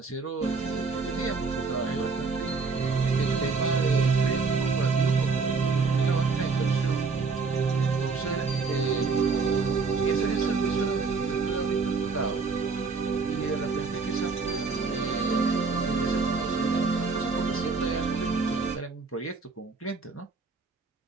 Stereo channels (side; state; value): left; quieter; 4.5 dB